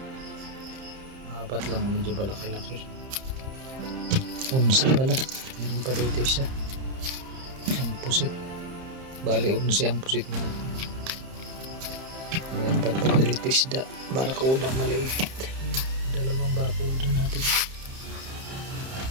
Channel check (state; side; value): late; left; 30 ms